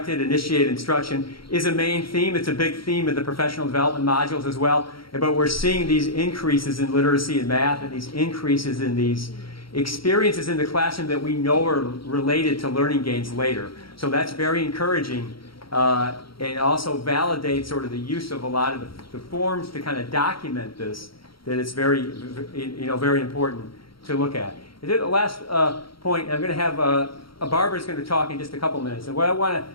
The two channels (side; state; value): right; late; 0.74 ms